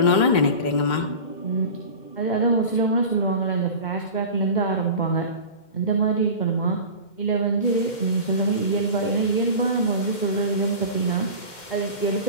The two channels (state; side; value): late; right; 2.1 ms